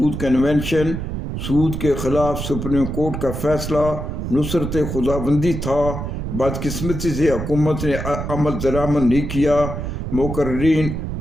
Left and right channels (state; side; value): noise; right; rumble, 5 dB below the sound